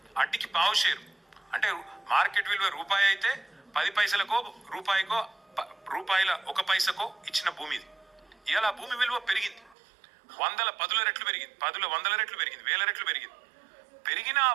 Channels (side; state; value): left; drops out; at 9.8 s